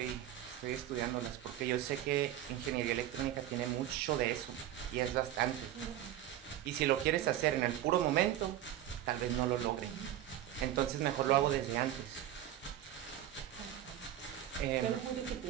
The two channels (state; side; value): quieter; left; 12.2 dB